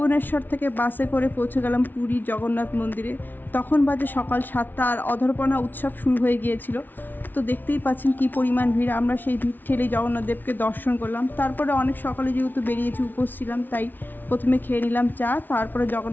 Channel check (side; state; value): right; late; 0.088 ms